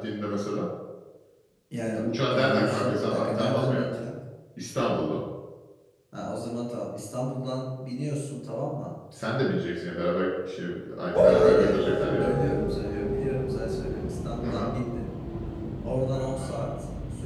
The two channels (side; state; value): both; identical; correlation 1.00